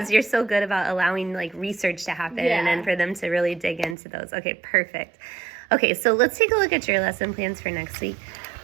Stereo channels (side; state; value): left; drops out; at 4.0 s